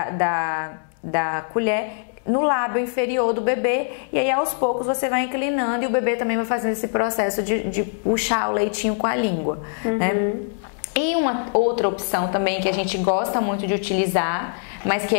colher no lábio inferior do bebê, e aí aos poucos você vai inclinando e o bebê também vai fazendo esse processo de puxar o leitinho com a língua, né? E uma outra opção também que a gente gosta muito de utilizar, mas que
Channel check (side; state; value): right; silent; digital silence